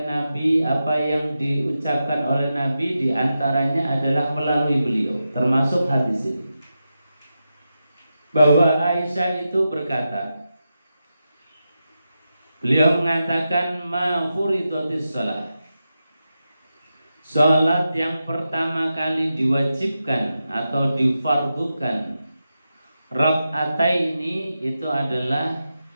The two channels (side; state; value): both; inverted; correlation -0.89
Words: Nabi, apa yang diucapkan oleh Nabi, diantaranya adalah melalui beliau, termasuk hadis ini. Bahwa Aisyah itu berkata, beliau mengatakan, ma furidatis shalah, salat yang pertama kali diwajibkan atau difardukan rakaataini itu adalah